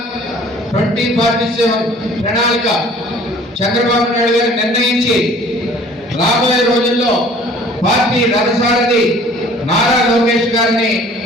2047 ప్రణాళిక చంద్రబాబు నాయుడు గారు నిర్ణయించి రాబోయే రోజుల్లో పార్టీ రథసారథి నారా లోకేష్ గారిని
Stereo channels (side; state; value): both; normal; correlation 0.51